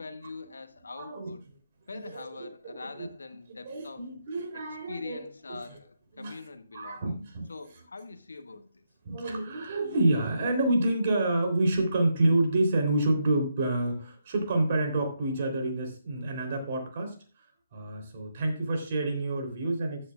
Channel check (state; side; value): inverted; both; correlation -0.81